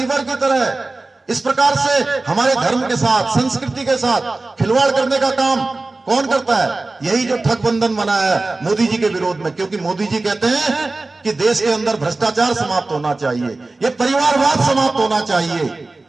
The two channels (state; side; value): quieter; left; 3.3 dB